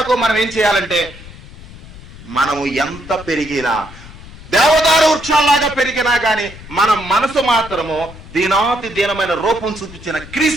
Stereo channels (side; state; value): left; noise; rumble, 17 dB below the sound